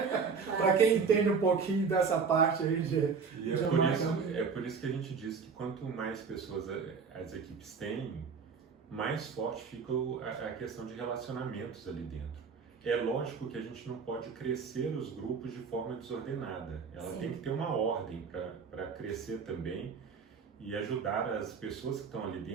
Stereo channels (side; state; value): left; quieter; 5.6 dB